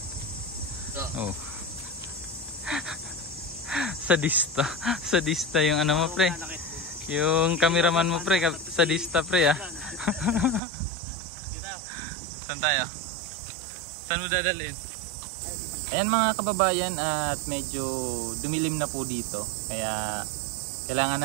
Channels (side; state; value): left; drops out; at 10.6 s